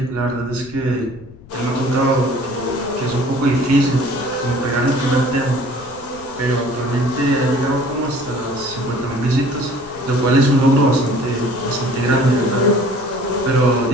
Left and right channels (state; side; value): noise; left; rumble, 21 dB below the sound